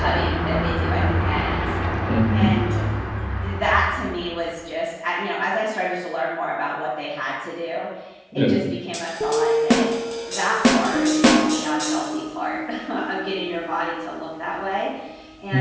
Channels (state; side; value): identical; both; correlation 1.00